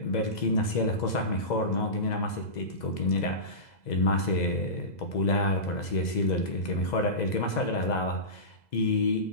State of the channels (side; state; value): right; late; 2.0 ms